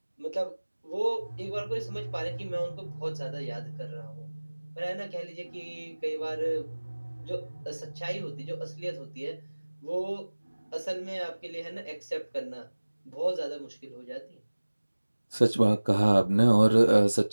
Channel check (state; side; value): inverted; both; correlation -1.00